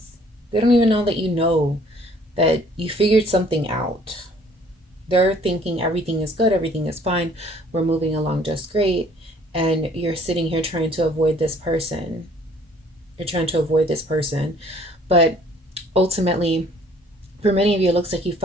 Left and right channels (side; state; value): both; normal; correlation 0.57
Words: They don't even know that you know that you figured something out. They're thinking everything is good, everything is fine, we're moving along just great, and you're sitting here trying to avoid this person. You're trying to avoid this person. But ultimately, for many of you, it looks like you